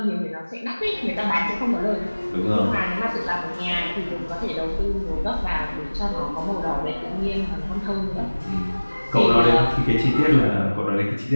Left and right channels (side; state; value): both; inverted; correlation -1.00